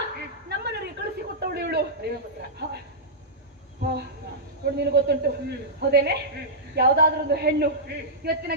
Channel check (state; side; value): normal; both; correlation -0.13